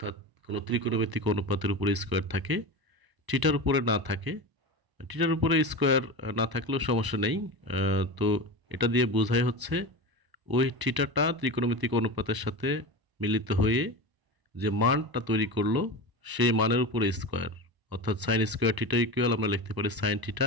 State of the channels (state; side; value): late; left; 1.0 ms